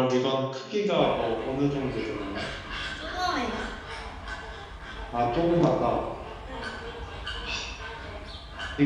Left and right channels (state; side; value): identical; both; correlation 1.00